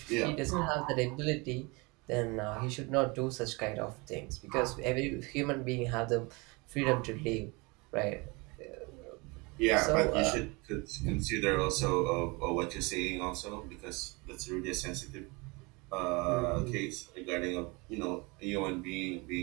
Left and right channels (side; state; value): left; quieter; 27.1 dB